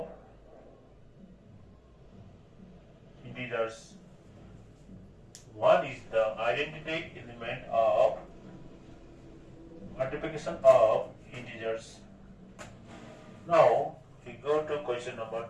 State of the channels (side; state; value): both; identical; correlation 1.00